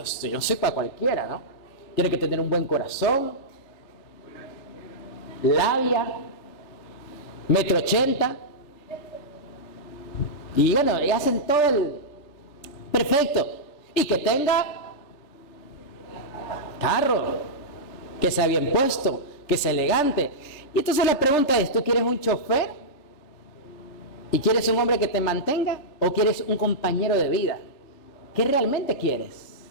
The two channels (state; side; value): late; right; 3.4 ms